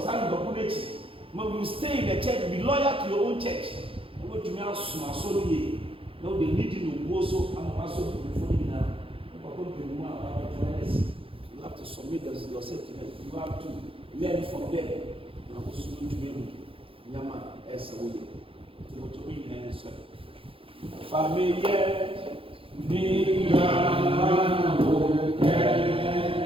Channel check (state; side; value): late; left; 0.26 ms